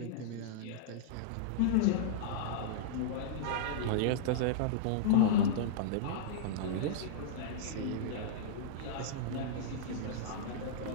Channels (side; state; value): both; different; correlation -0.02